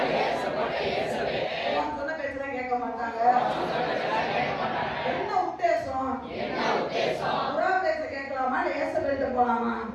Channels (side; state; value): both; identical; correlation 1.00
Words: சொன்ன பேச்சுதான் கேட்க மாட்டாங்க. என்ன உத்தேசம்? புறா பேச கேட்கலாமா இல்ல ஏசவேல்கிட்ட போலாமா?